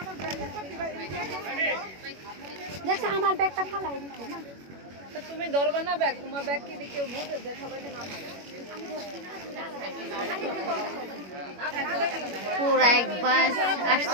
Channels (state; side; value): late; left; 21 ms